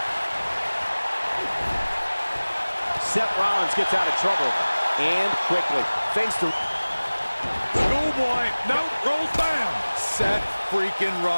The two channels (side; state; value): both; inverted; correlation -1.00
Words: Seth Rollins gets out of trouble, and quickly. Thanks to... Schoolboy, no, rolls down. Seth freaking